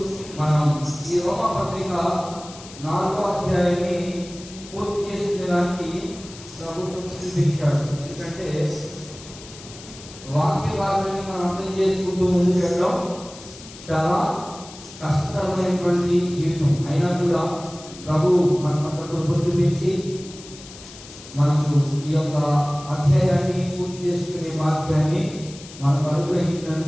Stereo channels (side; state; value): left; noise; hiss, 17 dB below the sound